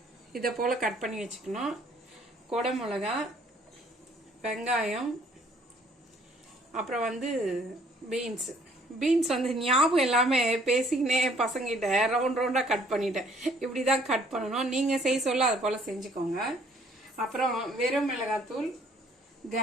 இதை போல கட் பண்ணி வச்சுக்கணும். கொடை மிளகா, வெங்காயம், அப்புறம் வந்து பீன்ஸ் வந்து ஞாபகம் எல்லாமே பேசிக்கினே பசங்கிட்ட ரவுண்டா கட் பண்ணிட்டேன். இப்படிதான் கட் பண்ணணும். நீங்க செய்ய சொல்ல அது போல செஞ்சுக்கோங்க. அப்புறம் வெறும் மிளகாத்தூள்,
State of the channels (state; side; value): normal; both; correlation 0.61